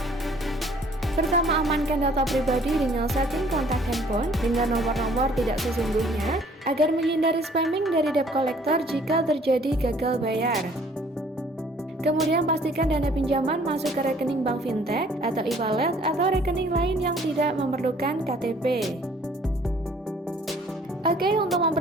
Pertama, amankan data pribadi dengan setting kontak handphone dengan nomor-nomor tidak sesungguhnya agar menghindari spamming dari debt collector jika terjadi gagal bayar. Kemudian pastikan dana pinjaman masuk ke rekening bank fintech atau e-wallet atau rekening lain yang tidak memerlukan KTP. Oke, untuk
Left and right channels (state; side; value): normal; both; correlation 0.57